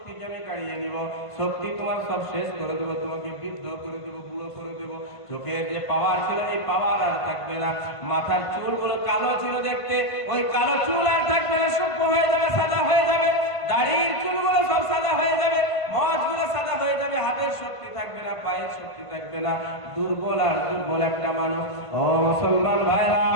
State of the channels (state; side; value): late; right; 1.5 ms